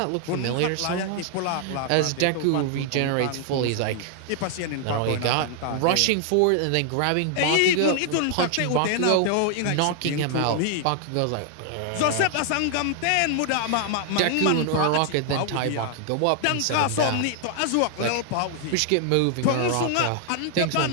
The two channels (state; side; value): different; both; correlation 0.00